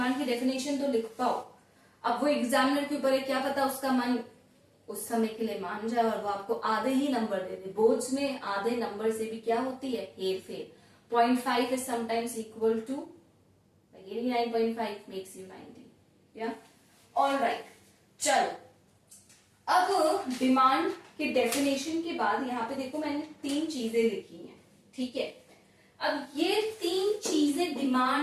की डेफिनेशन तो लिख पाओ। अब वो एग्जामिनर के ऊपर है, क्या पता उसका मन उस समय के लिए मान जाए और वो आपको आधे ही नंबर दे दे। बोर्ड्स में आधे नंबर से भी क्या होती है, हेर फेर। 0.5 is sometimes equal to 89.5 makes you 90. Yeah? All right. चलो, अब डिमांड के डेफिनेशन के बाद यहाँ पे देखो मैंने 3 चीजें लिखी हैं, ठीक है। अब ये 3 चीजें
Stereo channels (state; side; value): identical; both; correlation 1.00